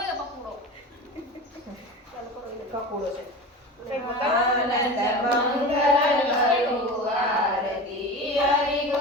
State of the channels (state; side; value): normal; both; correlation 0.30